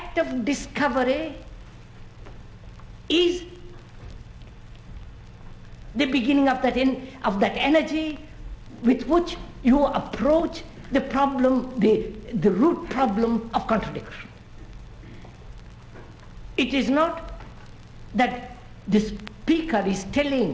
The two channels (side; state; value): both; identical; correlation 1.00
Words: of discovery is the beginning of that energy with which you approach the problem, the root problem of contradiction. It is not that the speaker is